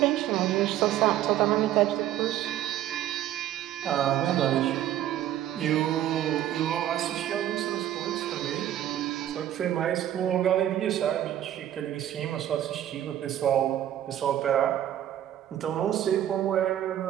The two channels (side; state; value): left; quieter; 11.9 dB